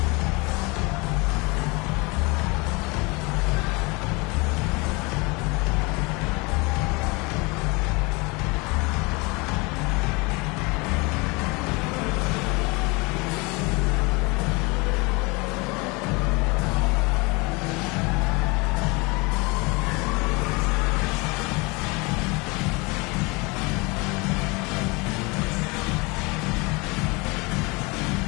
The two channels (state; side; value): quieter; right; 26.9 dB